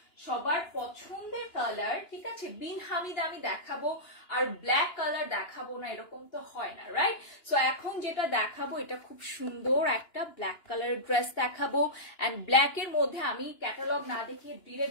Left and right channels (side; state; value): right; late; 2.9 ms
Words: সবার পছন্দের কালার, ঠিক আছে। বিন হামিদ আমি দেখাবো আর ব্ল্যাক কালার দেখাবো না, এরকম তো হয় না, রাইট। সো এখন যেটা দেখাবো এটা খুব সুন্দর একটা ব্ল্যাক কালার ড্রেস দেখাবো। এন্ড ব্ল্যাক এর মধ্যে আমি ক্যাটালগ না দেখিয়ে